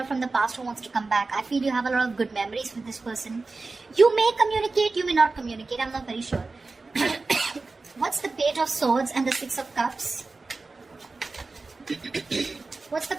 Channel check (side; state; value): left; quieter; 3.8 dB